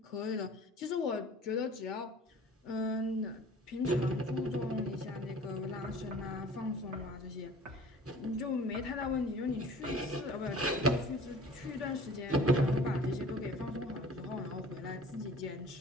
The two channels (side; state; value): both; normal; correlation 0.47